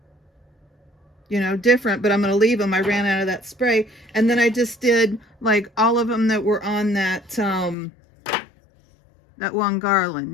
you know, different, but I'm going to leave them. I ran out of that spray, and then I just did like all of them that were on that that one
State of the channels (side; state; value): right; drops out; at 7.8 s